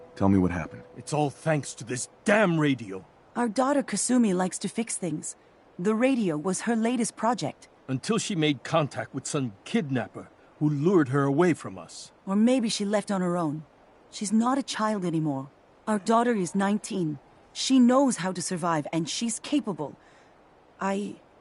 Tell me what happened. It's all thanks to this damn radio. Our daughter Kasumi likes to fix things. The radio was her latest project. Until she made contact with some kidnapper who lured her away from us. Or maybe she left on her own. She's not a child anymore. Our daughter is 19. She knows how to survive, and she's capable. I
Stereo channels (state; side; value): identical; both; correlation 1.00